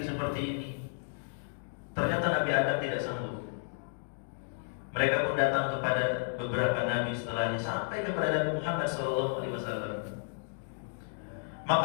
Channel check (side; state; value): right; silent; digital silence